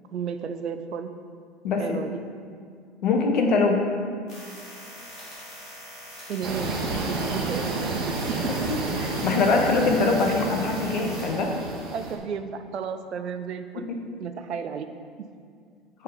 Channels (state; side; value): normal; both; correlation 0.34